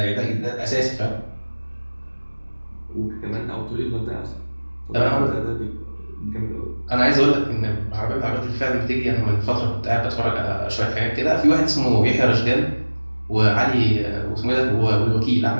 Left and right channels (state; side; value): inverted; both; correlation -1.00